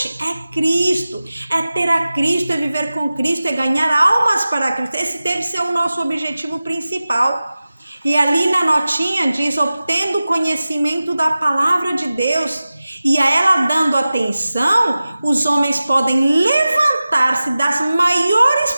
é Cristo, é ter a Cristo, é viver com Cristo, é ganhar almas para Cristo. Esse deve ser o nosso objetivo principal. E ali na notinha diz, obtendo conhecimento da palavra de Deus, e a ela dando atenção, os homens podem levantar-se das maiores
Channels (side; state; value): both; inverted; correlation -0.96